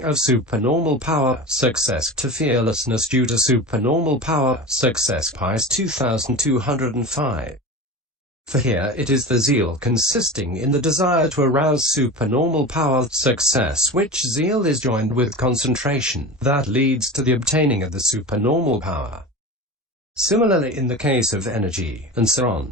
of supernormal power, success to fearlessness due to supernormal power, success. Paþis 2205. For here it is the zeal consisting in the desire to arouse supernormal power, success, which zeal is joined with concentration, that leads to the obtaining of the supernormal power. Similarly in the case of energy, and so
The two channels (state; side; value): normal; both; correlation 0.29